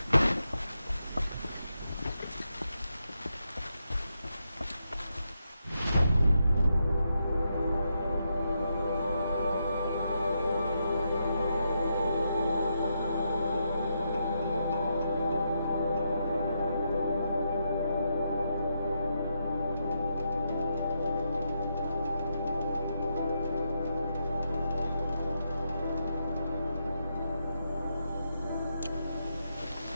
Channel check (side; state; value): both; inverted; correlation -0.82